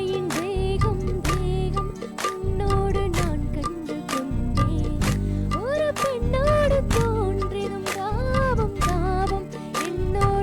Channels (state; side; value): identical; both; correlation 1.00